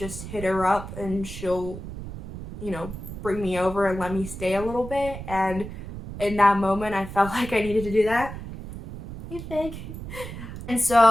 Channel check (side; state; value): right; noise; rumble, 10 dB below the sound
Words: hit her up and she'll, you know, bring me over and let me stay a little bit. And in that moment, I felt like I needed to do that. Hey, Fig. And